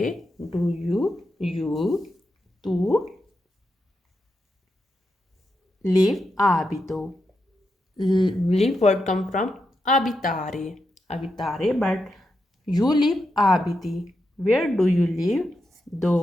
do you, tu, live, abito. Live word come from abitare, but you live abiti. Where do you live?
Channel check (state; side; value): normal; both; correlation 0.86